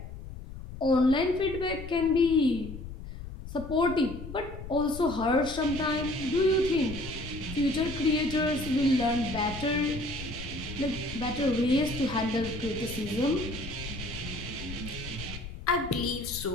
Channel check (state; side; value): noise; left; rumble, 11 dB below the sound